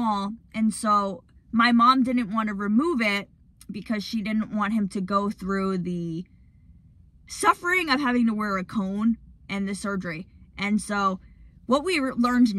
and so my mom didn't want to remove it because she didn't want him to go through the suffering of having to wear a cone and the surgery. And so what we learned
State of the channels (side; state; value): both; identical; correlation 1.00